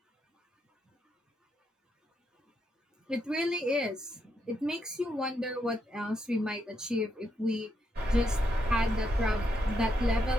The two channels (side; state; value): both; normal; correlation 0.80